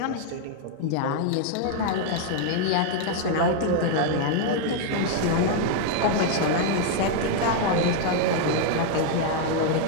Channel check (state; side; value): different; both; correlation 0.00